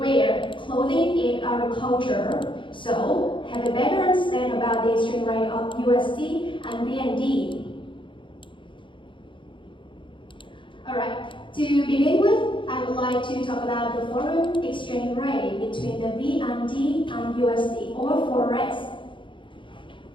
clothing, and agriculture. So, have a better understanding about the exchange rate of USD and VND. Alright, to begin with, I would like to talk about the foreign exchange rate between the VND and USD, or Forex.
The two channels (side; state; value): right; late; 0.24 ms